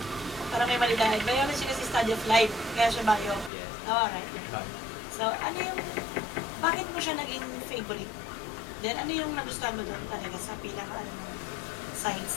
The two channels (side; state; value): right; drops out; at 3.5 s